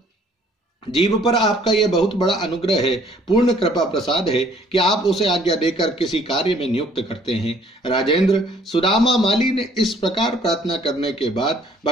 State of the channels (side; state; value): both; normal; correlation 0.59